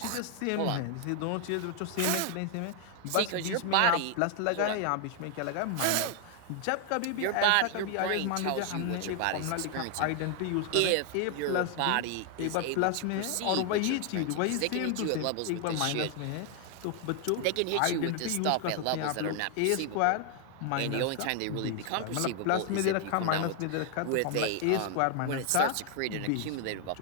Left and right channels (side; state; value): both; different; correlation 0.00